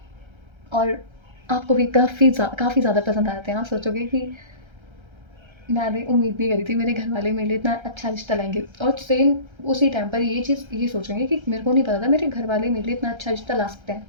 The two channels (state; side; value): late; left; 1.3 ms